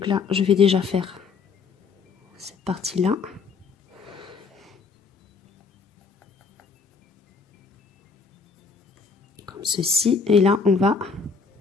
là, je vais déjà faire cette partie-là. Comme ceci. Et là, on va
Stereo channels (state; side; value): quieter; right; 5.1 dB